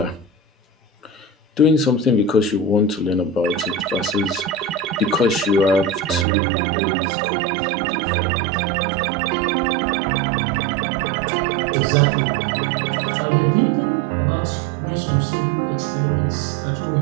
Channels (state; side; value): drops out; left; at 6.2 s